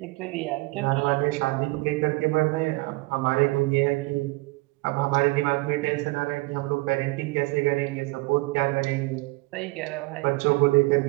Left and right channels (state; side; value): quieter; left; 23.3 dB